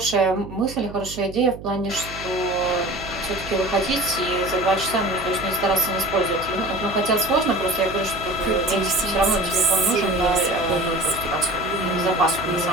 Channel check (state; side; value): noise; right; hum, 14 dB below the sound